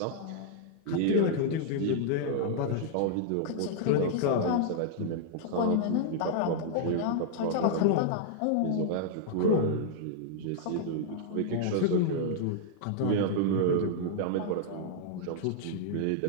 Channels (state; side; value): different; both; correlation -0.01